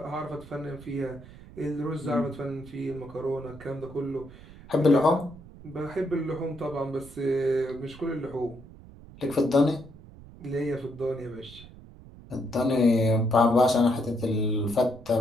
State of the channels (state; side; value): noise; right; rumble, 19 dB below the sound